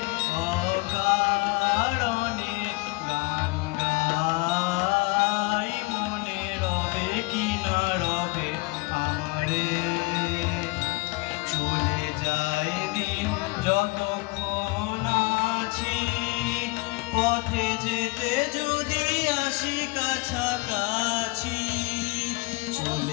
অকারণে গান গাই, মনে রবে কি না রবে আমারে। চলে যায় দিন যতক্ষণ আছি, পথে যেতে যদি আসি কাছাকাছি।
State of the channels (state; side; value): quieter; right; 25.1 dB